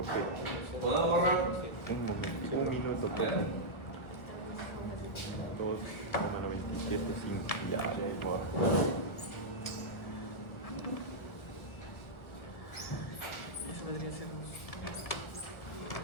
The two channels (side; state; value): right; late; 1.4 ms